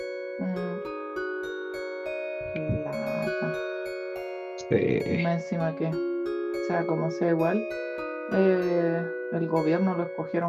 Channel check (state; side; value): identical; both; correlation 1.00